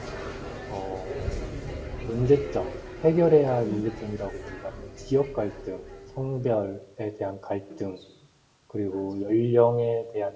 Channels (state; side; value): identical; both; correlation 1.00